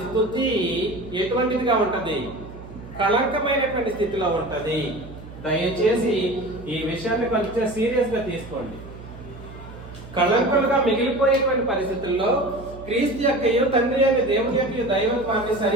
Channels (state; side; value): noise; right; hum, 15 dB below the sound